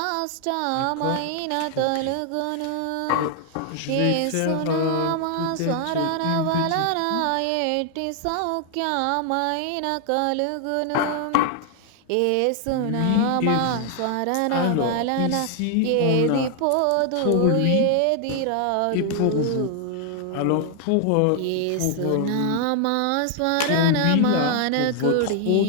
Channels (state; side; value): different; both; correlation 0.00